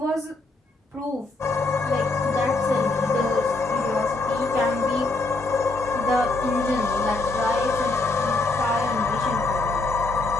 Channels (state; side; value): quieter; right; 3.2 dB